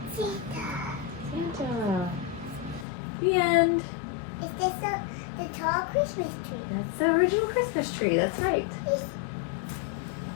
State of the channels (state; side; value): drops out; right; at 2.9 s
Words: Santa. The end. Is this the tall Christmas tree? That's the original Christmas tree. That's right.